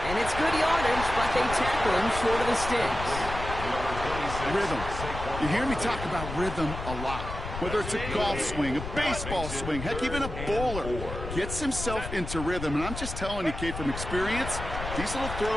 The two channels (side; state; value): left; noise; rumble, 7 dB below the sound